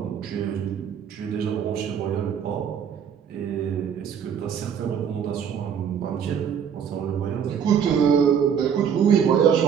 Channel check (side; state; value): left; quieter; 7.8 dB